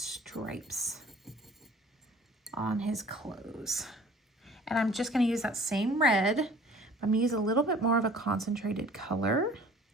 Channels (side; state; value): both; normal; correlation 0.50